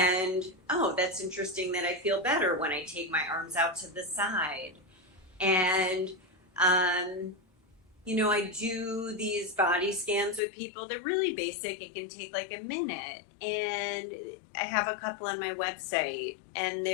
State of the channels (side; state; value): right; drops out; at 10.4 s